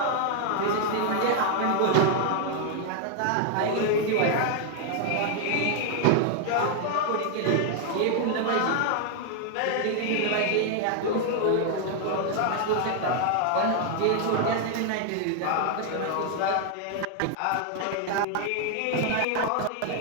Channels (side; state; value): both; different; correlation 0.00